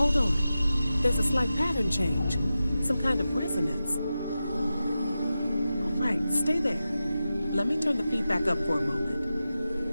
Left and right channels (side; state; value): both; inverted; correlation -0.93